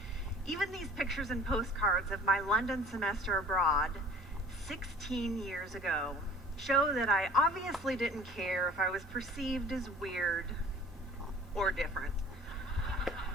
Even these pictures and postcards of my London semester abroad 16 years ago show that I obviously didn't care if I was perceived as weird or different.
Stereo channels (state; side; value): normal; both; correlation 0.48